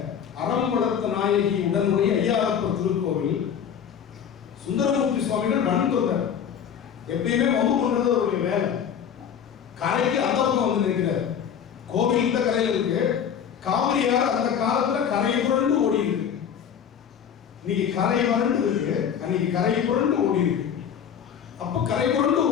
அறம் வளர்த்த நாயகி உடனுடைய ஐயாரப்பர் திருக்கோவில் சுந்தரமூர்த்தி சுவாமிகள் நடந்துள்ளார். எப்பயுமே வம்பு பண்றது அவருடைய வேலை. கரைக்கு அந்த பக்கம் வந்து நிற்கிறார். கோவில் இந்த கரையில இருக்கு, காவிரியார் அந்த காலத்துல கரை புரண்டு ஓடி இருக்கு. இன்னைக்கு கரை வறண்டு இருக்கு, அன்னைக்கு கரை புரண்டு ஓடி இருக்கு. அப்ப கரை புரண்டு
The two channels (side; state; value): right; quieter; 8.2 dB